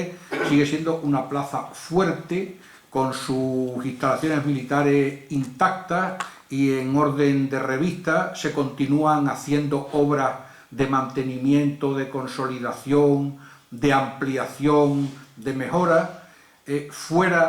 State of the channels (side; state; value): both; identical; correlation 1.00